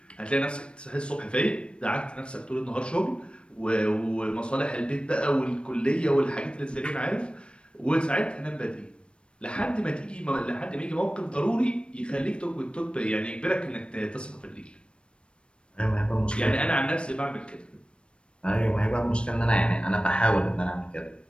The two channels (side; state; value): right; late; 0.057 ms